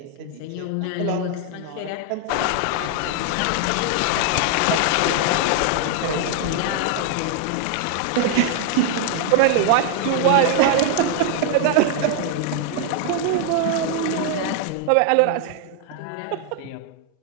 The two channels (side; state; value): both; different; correlation 0.00